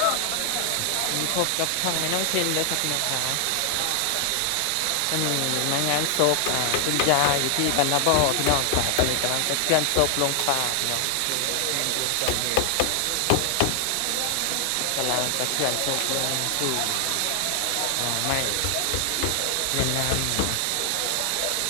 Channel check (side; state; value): both; different; correlation 0.00